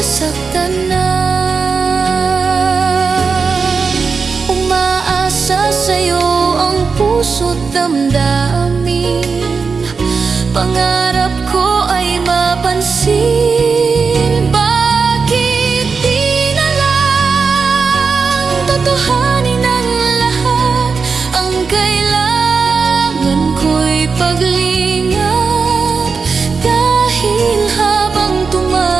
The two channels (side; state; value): left; quieter; 5.1 dB